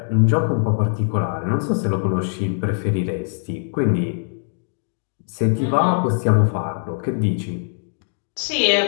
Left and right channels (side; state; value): right; silent; digital silence